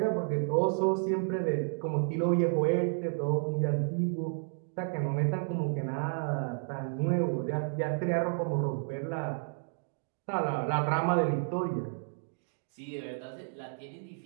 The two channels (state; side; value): silent; left; 57 dB below the other